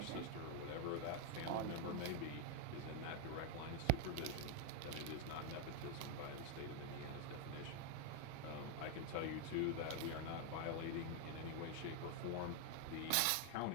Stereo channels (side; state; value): both; different; correlation 0.01